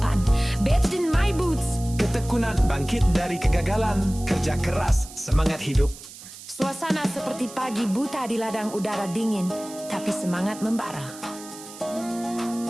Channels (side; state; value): right; noise; hiss, 16 dB below the sound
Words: Bathed in my boots, ketekunan bangkit dari kegagalan, kerja keras, semangat hidup. suasana seperti pagi buta di ladang udara dingin, tapi semangat membara.